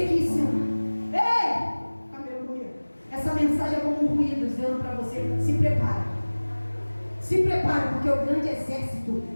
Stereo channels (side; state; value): both; inverted; correlation -1.00